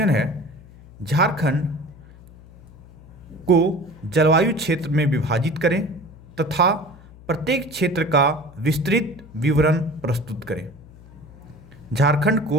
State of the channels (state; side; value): noise; left; hum, 21 dB below the sound